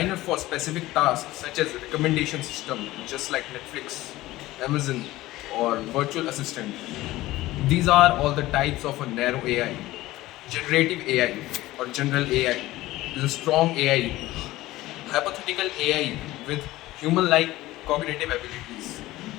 for specific tasks such as recommendation system, just like Netflix, Amazon, or virtual assistant, these are all the types of a narrow AI. Generative AI or general AI is a strong AI, hypothetical AI with human-like cognitive abilities.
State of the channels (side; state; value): right; quieter; 17.3 dB